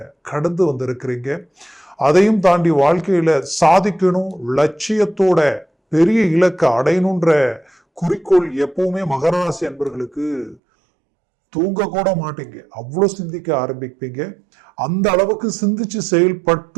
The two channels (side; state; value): left; drops out; at 10.6 s